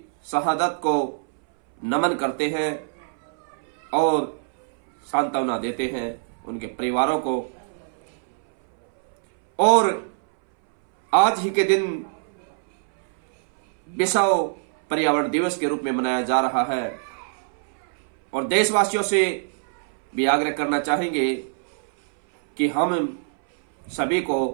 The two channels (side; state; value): left; silent; 62 dB below the other